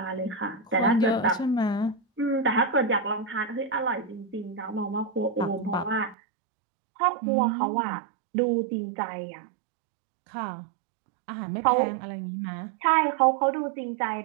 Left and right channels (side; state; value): left; drops out; at 6.2 s